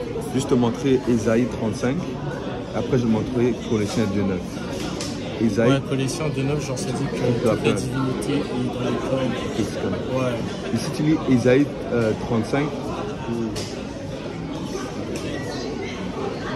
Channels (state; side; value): identical; both; correlation 1.00